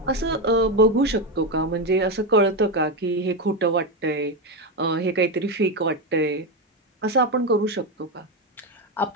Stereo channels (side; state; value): both; normal; correlation 0.11